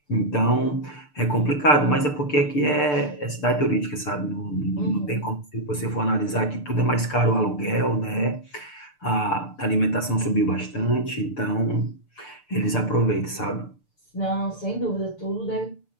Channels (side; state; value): right; late; 6.8 ms